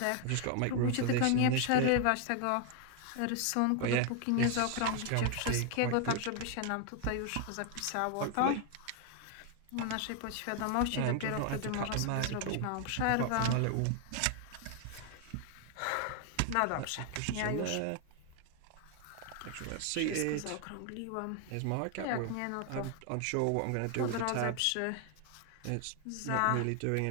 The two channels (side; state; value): both; different; correlation 0.00